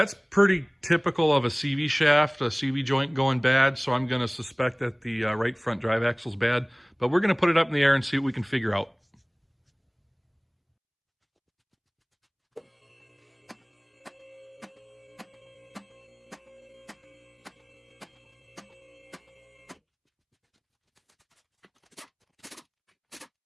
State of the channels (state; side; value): identical; both; correlation 1.00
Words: pretty typical of a CV shaft, a CV joint going bad, so I'm going to suspect that the right front drive axle's bad. But we're going to put it up in the air and see what we can figure out.